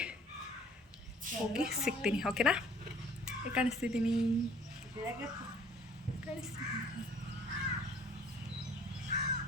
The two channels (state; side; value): normal; both; correlation 0.54